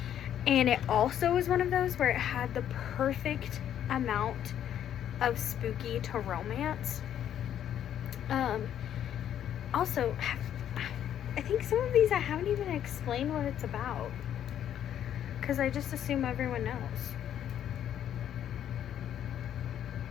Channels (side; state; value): right; quieter; 10.2 dB